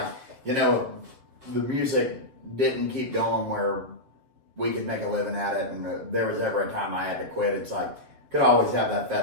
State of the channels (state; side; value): late; left; 7.6 ms